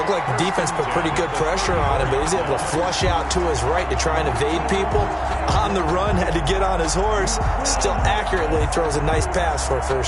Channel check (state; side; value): identical; both; correlation 1.00